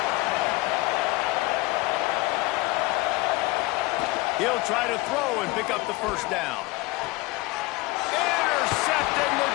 He'll try to throw and pick up the first down. Intercepted. The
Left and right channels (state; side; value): quieter; right; 21.7 dB